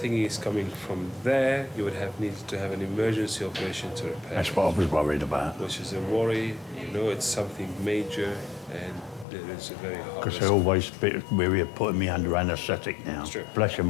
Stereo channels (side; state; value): right; drops out; at 9.2 s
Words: it's coming from there, you would have needed to have an emergency operation to repair. That's what I was worried about. Which is a worry. You know, it's something major, and it is a very hard. Because they're always a bit weary of putting me under anaesthetic now. It's true. Bless you,